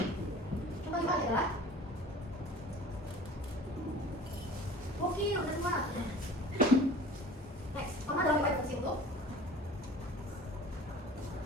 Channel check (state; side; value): normal; both; correlation 0.44